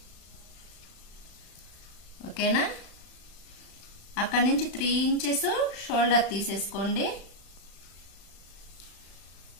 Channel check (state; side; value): late; right; 35 ms